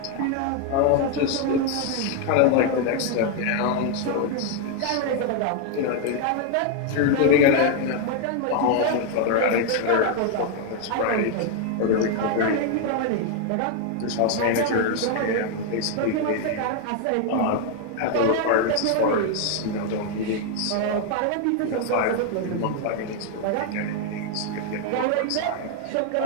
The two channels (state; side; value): different; both; correlation 0.01